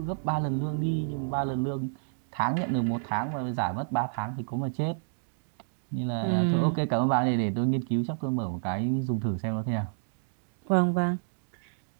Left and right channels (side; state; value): left; silent; digital silence